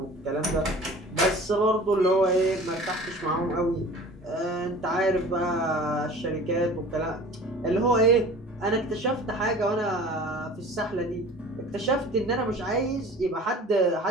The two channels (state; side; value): normal; both; correlation 0.43